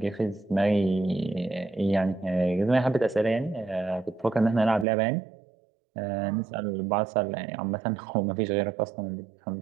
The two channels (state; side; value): drops out; left; at 4.9 s